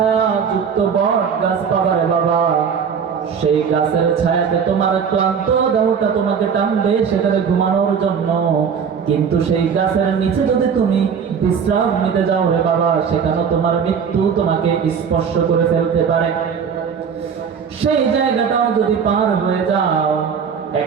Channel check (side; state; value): left; quieter; 6.8 dB